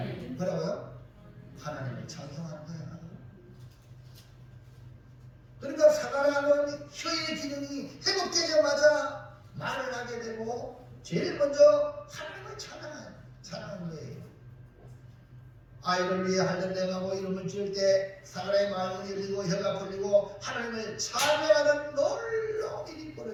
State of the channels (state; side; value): identical; both; correlation 1.00